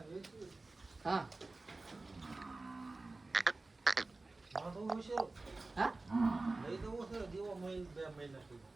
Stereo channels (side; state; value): left; quieter; 3.3 dB